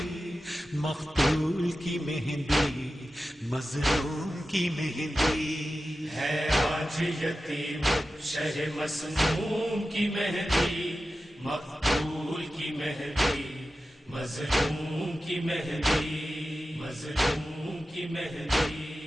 مقتول کی مہندی، مظلوم کی مہندی. ہے آج یتیم شہ مسموم کی مہندی، مقتول کی مہندی، مظلوم کی مہندی، مظلوم کی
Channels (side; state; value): both; normal; correlation 0.94